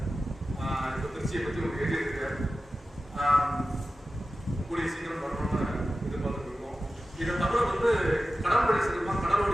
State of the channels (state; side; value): normal; both; correlation 0.94